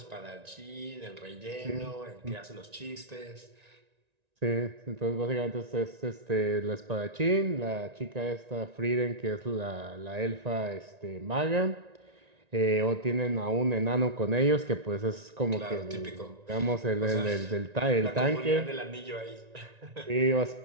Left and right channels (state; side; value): late; left; 1.9 ms